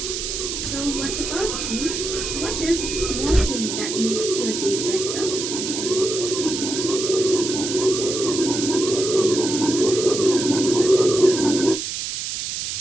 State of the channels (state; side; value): noise; right; hiss, 4 dB below the sound